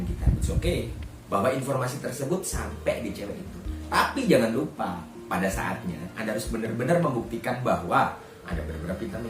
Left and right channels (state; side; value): identical; both; correlation 1.00